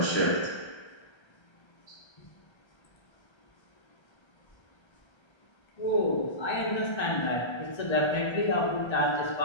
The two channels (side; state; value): right; late; 1.3 ms